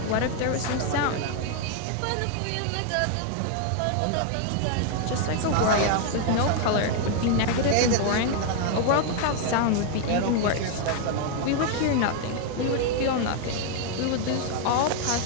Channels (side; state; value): both; different; correlation 0.00